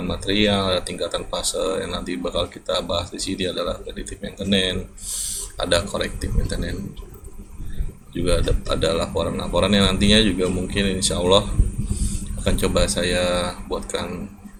material, ada tingkatan fase yang nanti bakal kita bahas di sini adalah predictive maintenance, ada corrective maintenance, juga ada laporan-laporan yang nantinya juga mungkin insya Allah akan coba saya buatkan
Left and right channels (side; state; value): both; identical; correlation 1.00